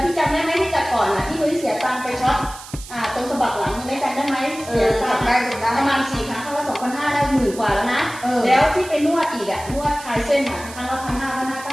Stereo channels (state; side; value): noise; right; hiss, 15 dB below the sound